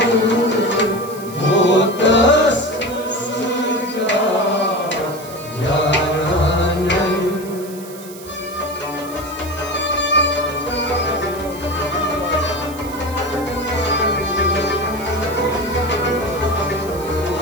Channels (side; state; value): right; noise; hiss, 17 dB below the sound